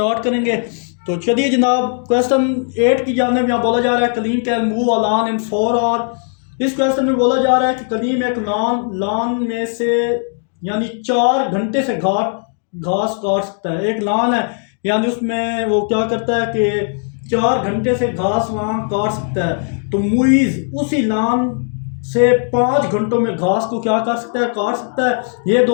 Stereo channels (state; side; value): silent; right; 56 dB below the other